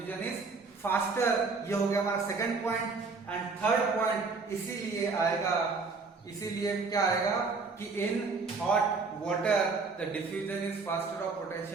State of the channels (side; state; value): left; quieter; 4.3 dB